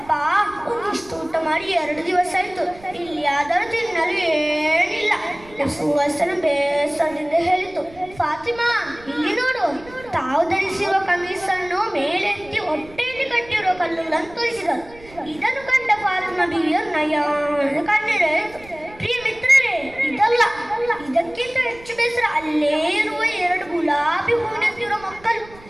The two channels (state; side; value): noise; right; rumble, 22 dB below the sound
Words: ಒಂದಿಷ್ಟು ಊಟ ಮಾಡಿ 2 ದಿವಸ ಆಯ್ತು, ಇಲ್ಲಿ ಆದರೂ ತಿನ್ನಲು ಏನಿಲ್ಲ. ಸುವಾಸನ ಬೇಸರದಿಂದ ಹೇಳಿತು. ಫಾತಿಮಾ ಇಲ್ಲಿ ನೋಡು, ತಾವು ಧರಿಸಿರುವ ಕಮೀಸನ್ನು ಮೇಲೆತ್ತಿ ಹೊಟ್ಟೆಯಲ್ಲಿ ಕಟ್ಟಿರುವ ಕಲ್ಲುಗಳನ್ನು ತೋರಿಸಿದರು. ಇದನ್ನು ಕಂಡ ಫಾತಿಮಾ ಬೀವಿಯ ನಯನ ಕಣ್ಣೀರಾಯಿತು. ಪ್ರಿಯ ಮಿತ್ರರೇ, ಇದಲ್ಲ, ಇದಕ್ಕಿಂತ ಹೆಚ್ಚು ಬೇಸರ ಅಲ್ಲೇ ಇರುವ 2 ಗುಲಾಬಿ ಹೂವಿನಂತಿರುವ ಮಕ್ಕಳು.